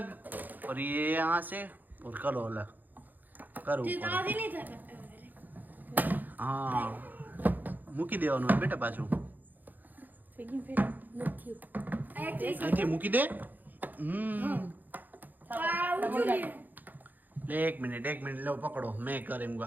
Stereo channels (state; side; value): late; left; 0.085 ms